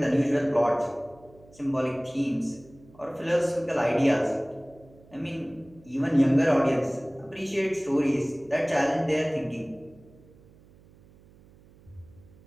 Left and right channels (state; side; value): noise; right; hum, 26 dB below the sound